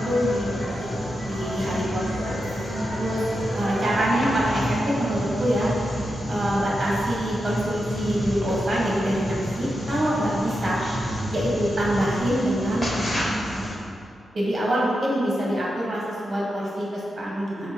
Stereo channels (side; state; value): both; normal; correlation 0.88